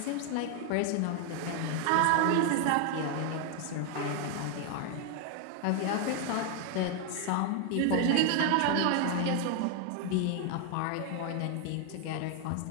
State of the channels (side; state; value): both; different; correlation 0.00